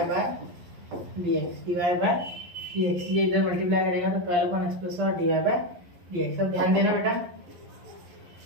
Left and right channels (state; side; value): late; left; 11 ms